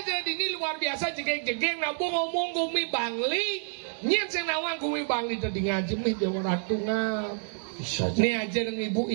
jadi ini luar biasa jegek-jegek nabung ngomong gumi Bangli. Nyen sing nawang gumi Bangli tadi ngaji mih dewa ratu ngap. Bisa aja. Nih aja dengan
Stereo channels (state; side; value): silent; left; 59 dB below the other